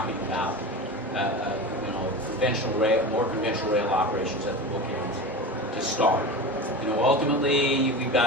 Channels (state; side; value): normal; both; correlation 0.28